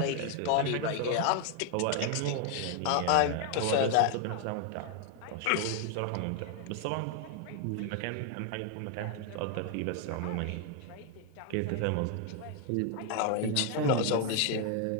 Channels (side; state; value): both; different; correlation 0.00